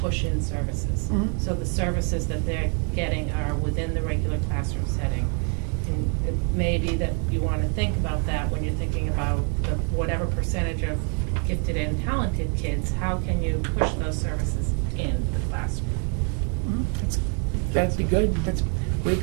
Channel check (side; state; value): left; quieter; 38.2 dB